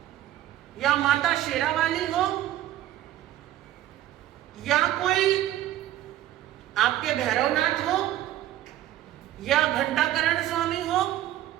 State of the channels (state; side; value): quieter; left; 13.4 dB